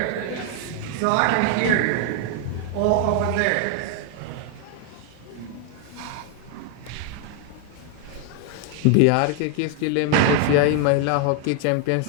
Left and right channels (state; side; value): different; both; correlation 0.01